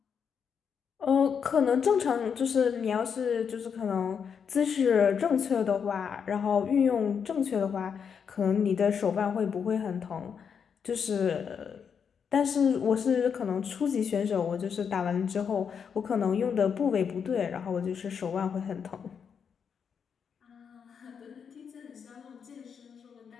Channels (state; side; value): quieter; right; 6.9 dB